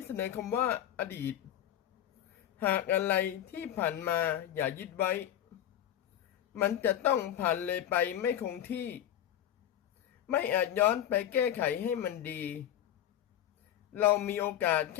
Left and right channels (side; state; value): right; quieter; 11.1 dB